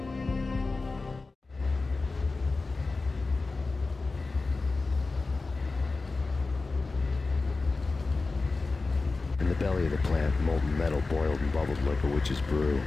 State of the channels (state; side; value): quieter; right; 3.7 dB